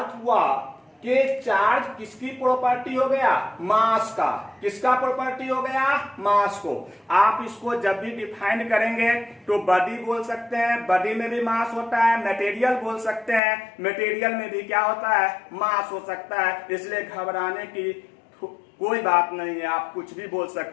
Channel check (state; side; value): drops out; right; at 13.4 s